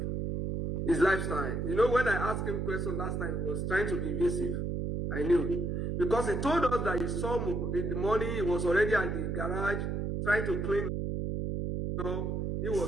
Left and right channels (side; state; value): right; noise; hum, 1 dB below the sound